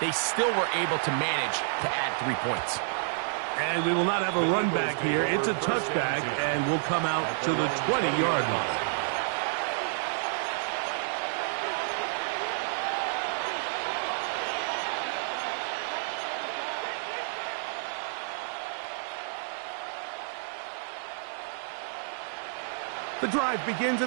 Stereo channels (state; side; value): silent; left; 58 dB below the other